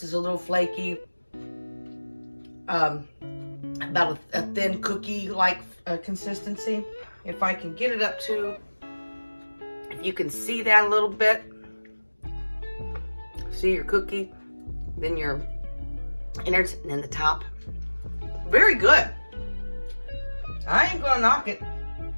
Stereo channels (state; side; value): inverted; both; correlation -1.00